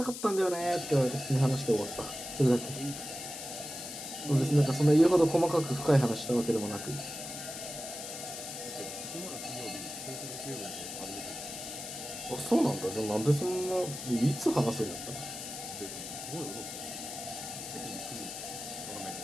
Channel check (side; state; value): left; noise; hiss, 8 dB below the sound